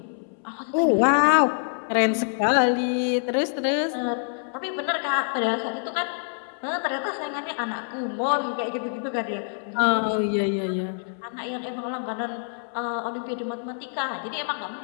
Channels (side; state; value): right; silent; 61 dB below the other